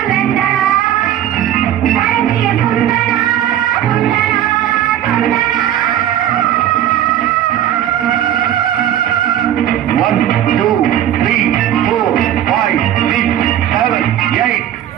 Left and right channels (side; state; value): left; quieter; 11.4 dB